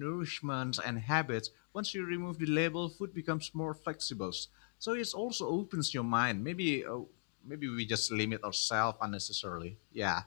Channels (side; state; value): right; silent; digital silence